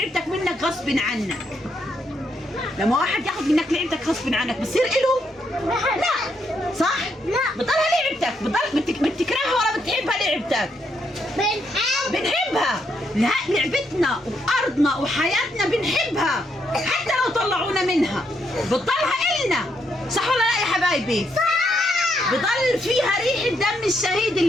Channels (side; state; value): both; normal; correlation 0.77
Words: منك غصب عنك، لما واحد ياخذ منك لعبتك غصب عنك بصير إله؟ لا صح؟ لا، بتضلها لعبتك. بتكرهها ولا بتحبها لعبتك؟ بنحبها. لا، لعبتنا وارضنا وحياتنا بنحبها حتى لو طلعونا منها بتضلها إلنا. صح ولا لا يا حبايبي؟ صح. بضل فيها ريحة دم الشهيد